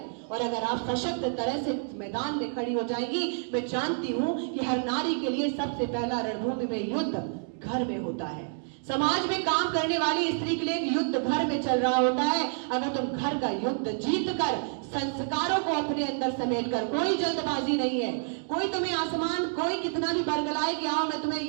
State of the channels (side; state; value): left; silent; digital silence